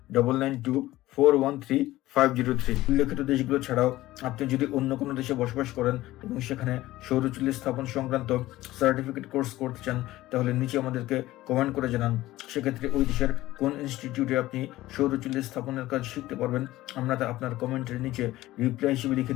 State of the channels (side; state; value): right; quieter; 16.5 dB